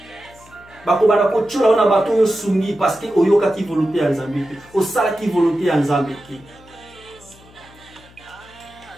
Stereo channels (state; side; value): noise; left; hum, 25 dB below the sound